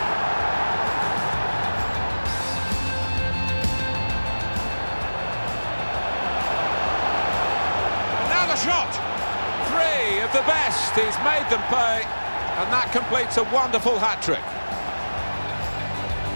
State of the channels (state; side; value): inverted; both; correlation -1.00